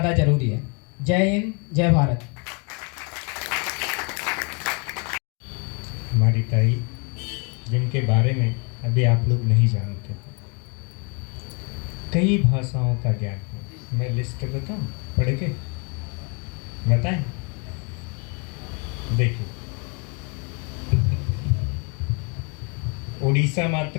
ज़रूरी है। जय हिंद, जय भारत। हमारी ताई जिनके बारे में अभी आप लोग नहीं जानते, कई भाषाओं का ज्ञान है। मैं लिस्ट बताऊं, पढ़ के बताएं? देखिए, उड़ीसा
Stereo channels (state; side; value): quieter; right; 34.1 dB